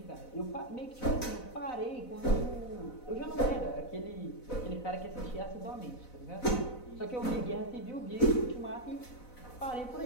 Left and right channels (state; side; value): late; right; 4.0 ms